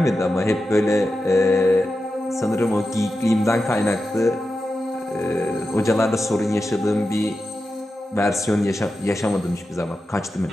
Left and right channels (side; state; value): both; normal; correlation 0.91